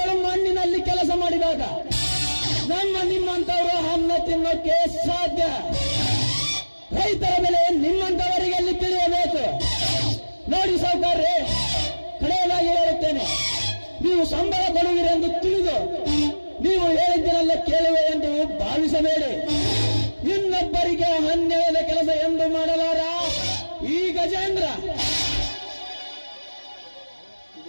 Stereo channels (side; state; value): both; inverted; correlation -1.00